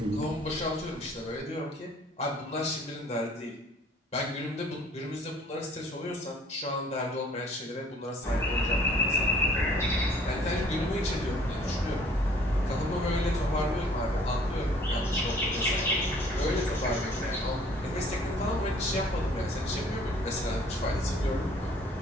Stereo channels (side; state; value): both; normal; correlation 0.56